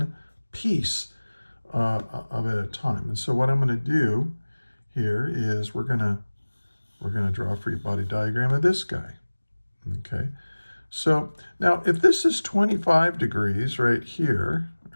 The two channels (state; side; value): inverted; both; correlation -1.00